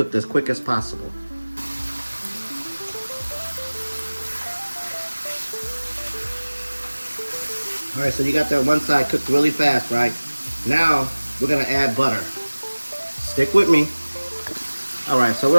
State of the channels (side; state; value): both; inverted; correlation -1.00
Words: as quick as possible. All right, so you got that one side cooked really fast, right? Now, we're gonna add butter. Stick with me. All right, so we're